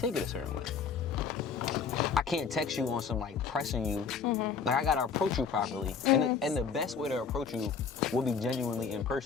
it a certain way. I can't text you on some like pressing you. Mm-hmm. Like I gotta approach you properly. Mm-hmm. And the best way to approach you will be genuinely in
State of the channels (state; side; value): quieter; right; 5.9 dB